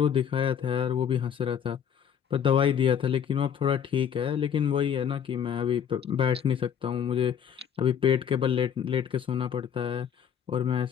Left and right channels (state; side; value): quieter; right; 8.4 dB